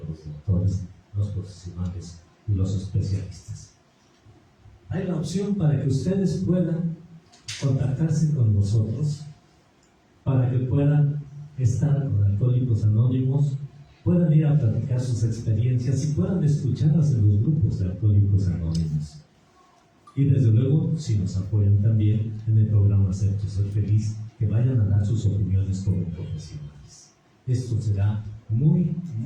los doctores, los profesionales y los especialistas. Hay la opción para que ustedes puedan contactarse con nosotros, para que puedan estar con Alcohólicos Anónimos, puedan ir a platicar sus experiencias y puedan escucharlas en los grupos de Alcohólicos Anónimos. Y desde luego, si nos apoyan también en el programa Acepto Ser Feliz, que vayan a dar sus opiniones como profesionales. Esto será muy,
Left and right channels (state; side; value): identical; both; correlation 1.00